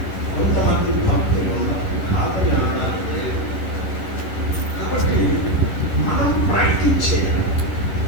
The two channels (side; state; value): right; late; 11 ms